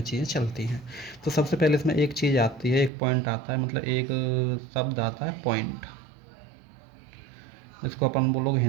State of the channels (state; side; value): drops out; left; at 2.9 s